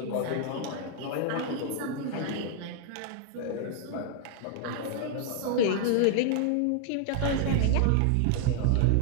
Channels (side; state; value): both; different; correlation 0.00